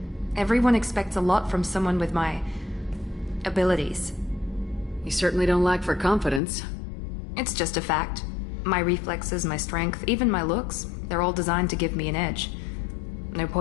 Everyone expects a lot from someone with my abilities. You certainly don't lack for confidence. It's just a fact. My reflexes, my strength, even my looks, they're all designed to give me an edge. No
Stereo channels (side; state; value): right; drops out; at 6.4 s